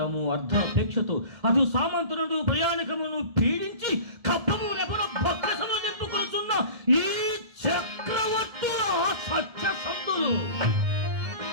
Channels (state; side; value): late; left; 1.7 ms